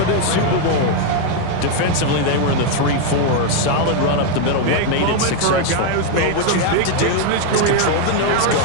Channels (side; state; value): both; different; correlation 0.01